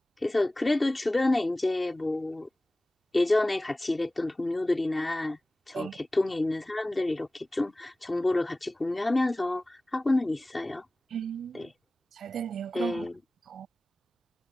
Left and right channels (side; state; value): both; normal; correlation 0.98